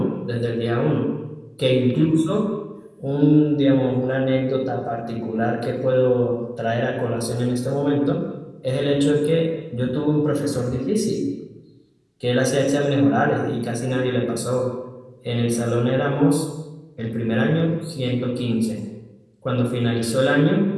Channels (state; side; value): identical; both; correlation 1.00